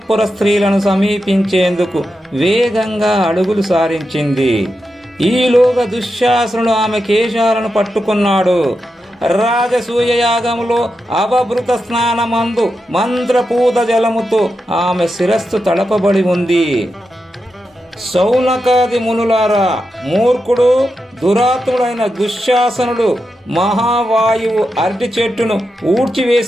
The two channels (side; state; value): both; normal; correlation 0.88